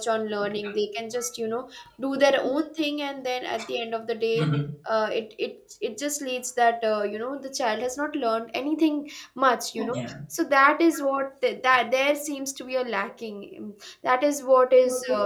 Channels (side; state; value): both; identical; correlation 1.00